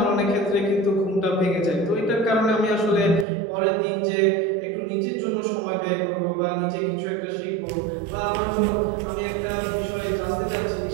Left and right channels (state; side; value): drops out; left; at 3.2 s